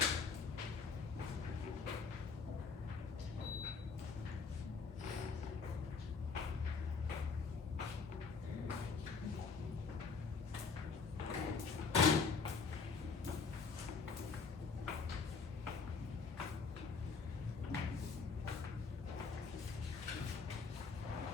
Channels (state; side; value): quieter; right; 5.0 dB